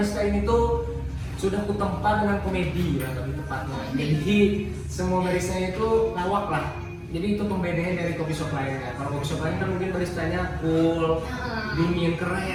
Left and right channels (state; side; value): identical; both; correlation 1.00